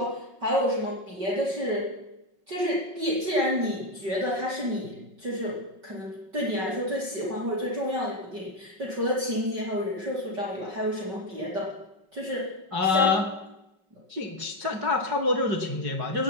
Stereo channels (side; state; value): left; late; 5.4 ms